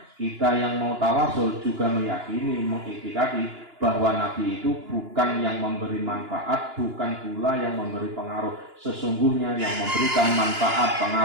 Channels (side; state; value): left; late; 2.9 ms